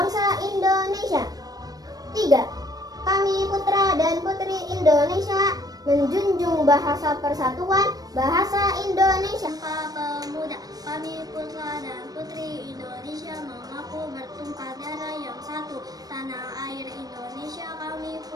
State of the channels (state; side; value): late; left; 0.18 ms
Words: Indonesia. 3. Kami putra dan putri Indonesia menjunjung bahasa persatuan, bahasa Indonesia. Sumpah Pemuda. Kami putra dan putri Indonesia mengaku bertumpah darah yang satu, tanah air Indonesia. Kami